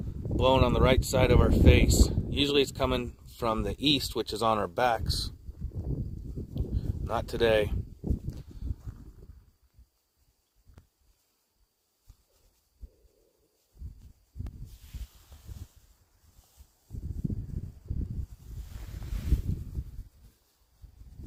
on the right side of our face. Usually it's coming from the east, which is on our backs. Not today.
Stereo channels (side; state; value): both; identical; correlation 1.00